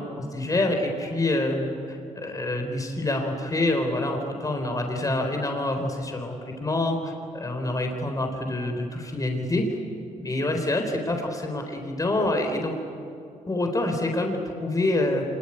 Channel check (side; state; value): both; normal; correlation 0.68